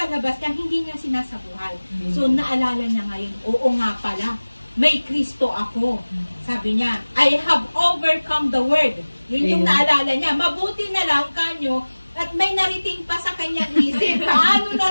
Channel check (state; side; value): inverted; both; correlation -1.00